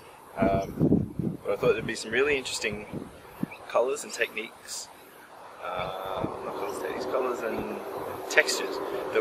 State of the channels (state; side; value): identical; both; correlation 1.00